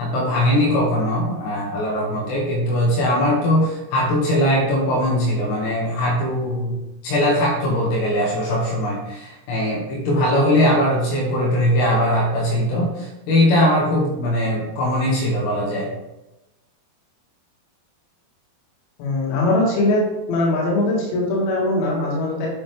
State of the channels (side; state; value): right; late; 24 ms